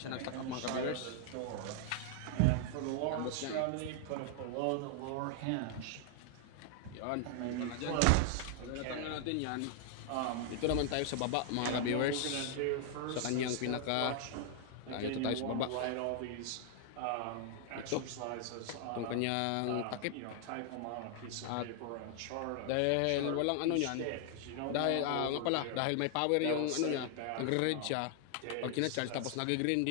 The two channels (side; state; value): both; different; correlation 0.00